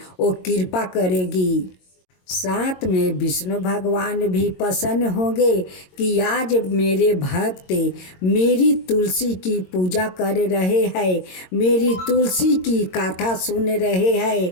वो कृपा करेगी। साथ में विष्णु भगवान भी प्रसन्न होंगे कि आज मेरे भक्त मेरी तुलसी की पूजा कर रहे हैं, मेरी तुलसी की कथा सुन रहे हैं,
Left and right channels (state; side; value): late; right; 22 ms